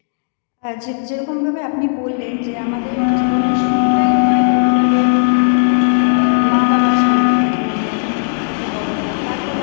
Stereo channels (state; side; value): silent; right; digital silence